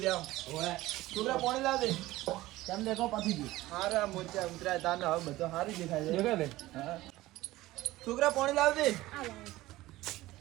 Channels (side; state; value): left; quieter; 17.4 dB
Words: જાવ ઓય છોકરા પાણી લાવ દે કેમ દેખો પાછી ગયું હારા મોચા ઉતરાય તાને હવે બધો સારું દેખાય છે દેખાય લે હા છોકરા પાણી લાવ દે